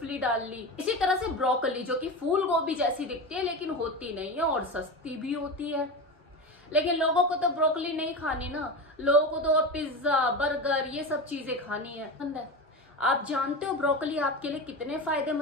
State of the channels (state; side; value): normal; both; correlation 0.24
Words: डाल ली। इसी तरह से ब्रोकली, जो कि फूल गोभी जैसी दिखती है लेकिन होती नहीं है और सस्ती भी होती है। लेकिन लोगों को तो ब्रोकली नहीं खानी ना, लोगों को तो पिज्जा, बर्गर, ये सब चीजें खानी है। आप जानते हो ब्रोकली आपके लिए कितने